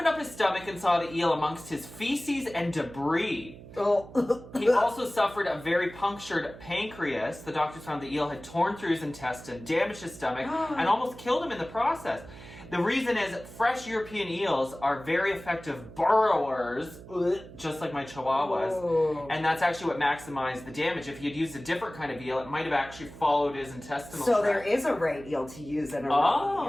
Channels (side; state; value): right; noise; hum, 17 dB below the sound